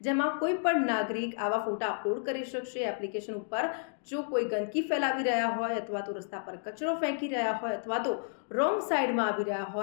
જેમાં કોઈ પણ નાગરિક આવા ફોટા અપલોડ કરી શકશે. એપ્લિકેશન ઉપર જો કોઈ ગંદકી ફેલાવી રહ્યા હોય, અથવા તો રસ્તા પર કચરો ફેંકી રહ્યા હોય, અથવા તો રોંગ સાઈડમાં આવી રહ્યા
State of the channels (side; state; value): right; silent; digital silence